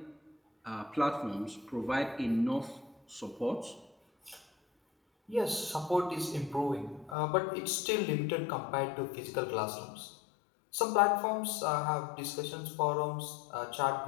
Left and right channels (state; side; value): drops out; right; at 7.2 s